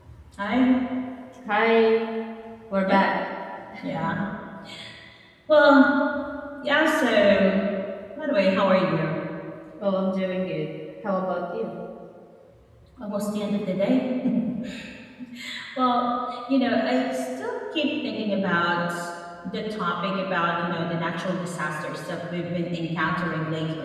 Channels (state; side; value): identical; both; correlation 1.00